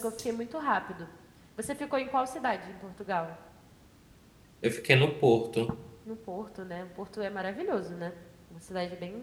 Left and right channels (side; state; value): both; identical; correlation 1.00